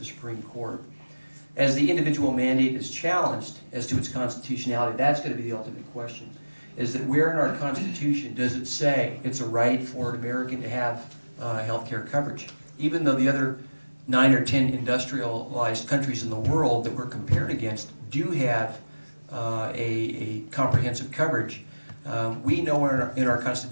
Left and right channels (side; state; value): both; inverted; correlation -1.00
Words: Supreme Court. As the individual mandate is challenged as to its constitutionality, that's going to be the ultimate question. Is that where in our Constitution does it say it's a right for an American to have health care coverage? Even though the other 9 or 10 industrialized countries in the world that we're compared against do have a comprehensive coverage, we know in our